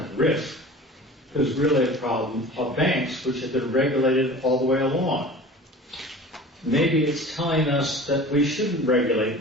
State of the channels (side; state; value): both; normal; correlation 0.40